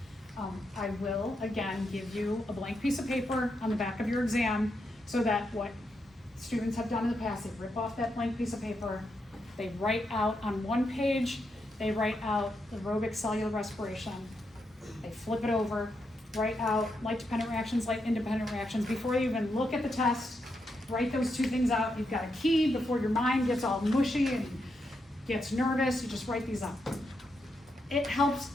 I will, again, give you a blank piece of paper on the back of your exam so that what students have done in the past, they rip off that blank piece of paper, they write out on one page, they write out aerobic cellular respiration, they flip it over, write out light-dependent reactions, light-independent reactions. Before you even look at the test, write those 2 things out. You've got a key before your mind gets all mushy and gets nervous, you just write these up. It helps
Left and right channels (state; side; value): normal; both; correlation 0.83